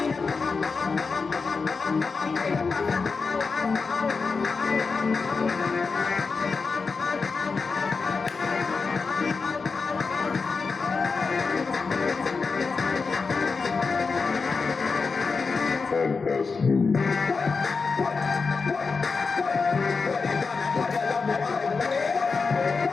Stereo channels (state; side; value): quieter; right; 4.7 dB